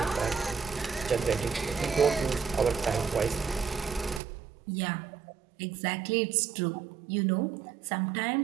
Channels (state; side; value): drops out; left; at 4.2 s